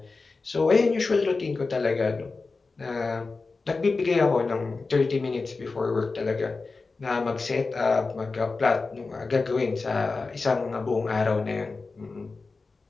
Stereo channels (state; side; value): quieter; right; 4.0 dB